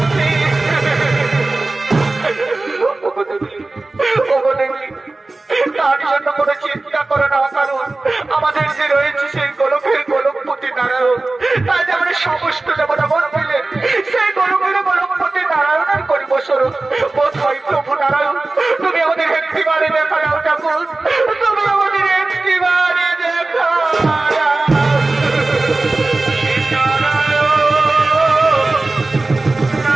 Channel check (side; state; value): left; quieter; 3.2 dB